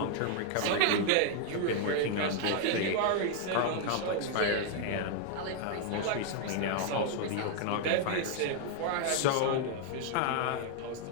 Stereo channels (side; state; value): both; different; correlation 0.00